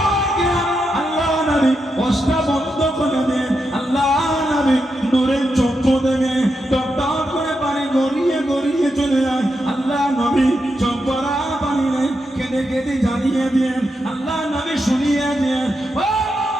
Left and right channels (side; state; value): both; normal; correlation 0.85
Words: আল্লাহ নবী ওয়াজটা বন্ধ করে দেন, আল্লাহ নবী নূরের চক্ষু থেকে টপটপ করে পানি গড়িয়ে গড়িয়ে চলে যায়। আল্লাহ নবী চোখ ভরা পানি নেই, কেঁদে কেঁদে জানিয়ে দেন, আল্লাহ নবী শুনিয়ে দেন,